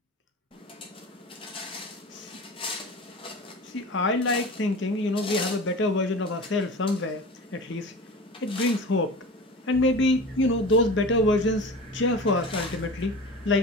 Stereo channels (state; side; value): normal; both; correlation 0.34